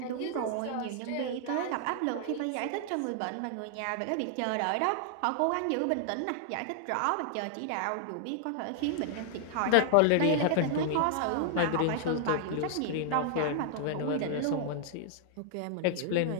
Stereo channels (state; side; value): different; both; correlation 0.00